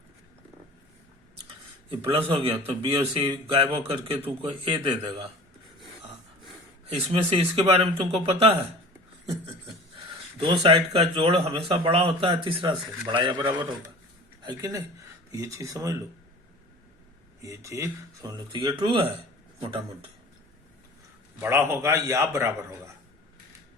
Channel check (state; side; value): normal; both; correlation 0.41